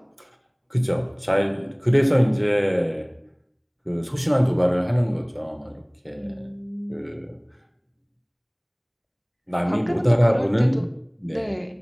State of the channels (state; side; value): identical; both; correlation 1.00